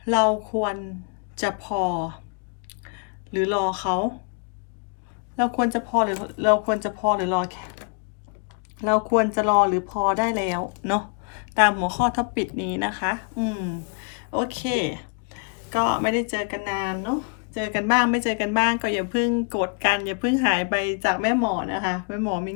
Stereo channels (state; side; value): quieter; right; 37.7 dB